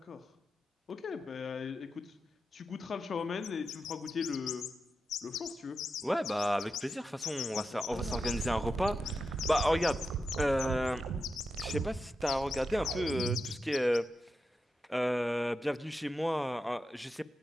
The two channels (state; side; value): normal; both; correlation 0.89